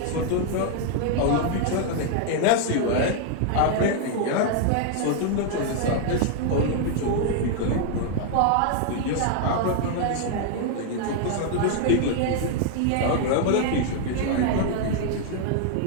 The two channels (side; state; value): both; different; correlation 0.00